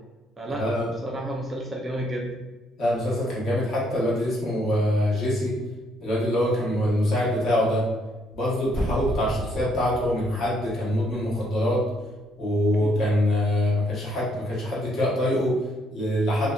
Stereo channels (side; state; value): both; normal; correlation 0.71